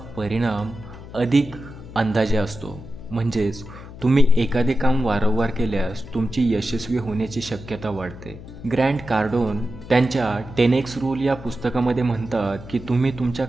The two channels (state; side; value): noise; left; hum, 15 dB below the sound